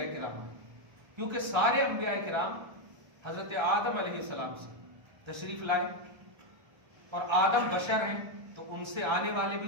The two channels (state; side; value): late; left; 1.3 ms